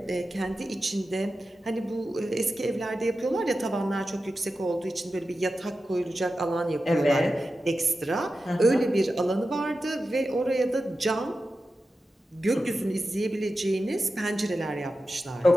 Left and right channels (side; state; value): both; normal; correlation 0.92